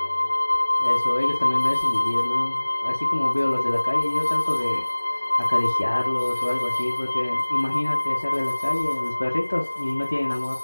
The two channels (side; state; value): both; inverted; correlation -1.00